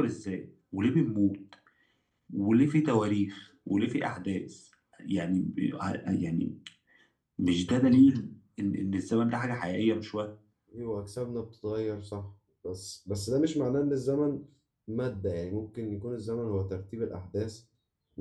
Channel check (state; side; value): identical; both; correlation 1.00